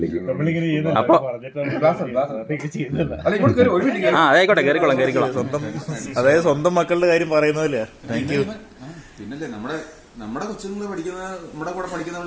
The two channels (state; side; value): identical; both; correlation 1.00